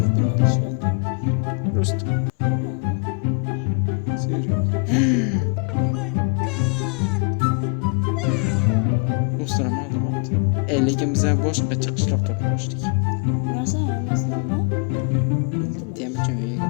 Rost. Serious. O'stiram oldi. Lekin biz boshqa chiqishloq topmoqchidik. Masalan. Temachon uyga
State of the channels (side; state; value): right; quieter; 38.3 dB